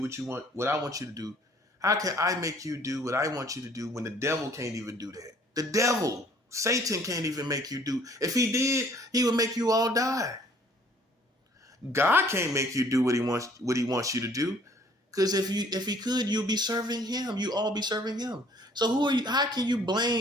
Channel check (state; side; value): normal; both; correlation 0.57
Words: what I want you to do? How can I make you do what I want you to do when the devil can't even do that? The devil, Satan, can't even make you do. If he did, he would make you all die. God can't make you do what he wants you to do, because if he could, you'll be serving him. You all be serving him. So who are you? How can you